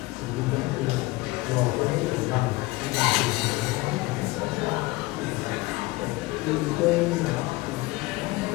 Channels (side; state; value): right; quieter; 21.2 dB